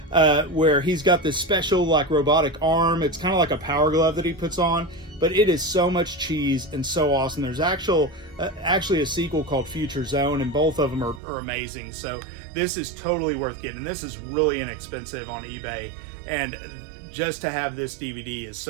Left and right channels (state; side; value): drops out; left; at 11.2 s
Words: where he's got this special like robotic arm. It's kind of like a power glove that he puts on, but it is so much cheese and so awesome. There's actually a sequel called Future Zone, and both of them are amazing. So this is totally worth getting. This is really inexpensive on eBay, and just to have this DVD is